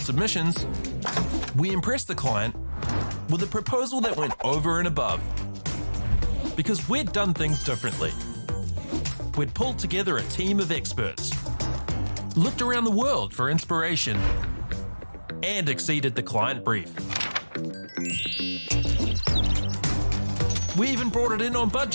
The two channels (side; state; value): both; inverted; correlation -1.00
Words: we impressed the client with a proposal that went over and above. Because we'd done things differently. We'd pulled together a team of experts, looked around the world for inspiration, and exceeded the client brief. We even brought it in on